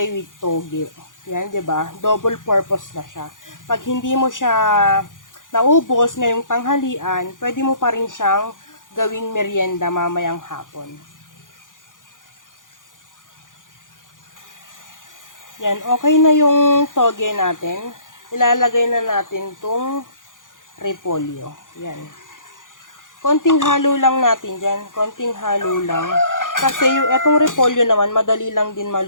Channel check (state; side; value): late; right; 0.88 ms